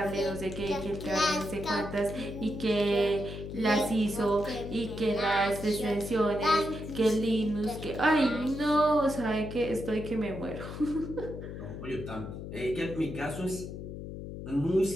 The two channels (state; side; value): noise; left; hum, 9 dB below the sound